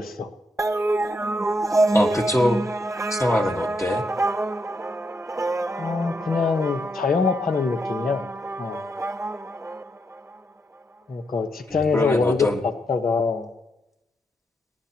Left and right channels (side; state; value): both; normal; correlation 0.80